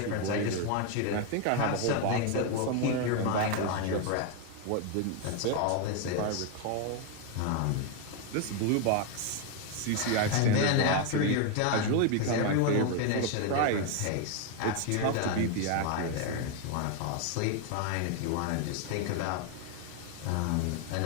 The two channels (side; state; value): both; different; correlation 0.01